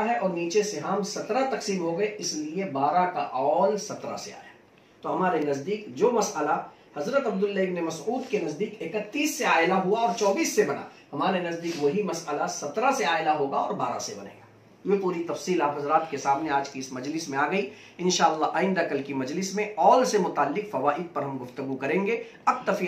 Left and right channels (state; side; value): identical; both; correlation 1.00